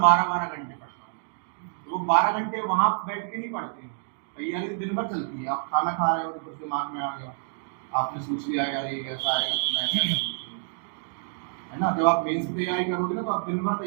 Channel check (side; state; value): left; silent; digital silence